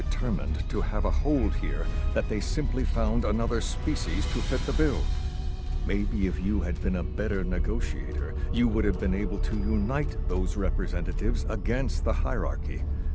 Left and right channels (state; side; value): identical; both; correlation 1.00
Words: to have a hold here that they simply found another species to fit the bill. Maybe if you had been a better negotiator, you would have been able to unite those representatives against the hierarchy.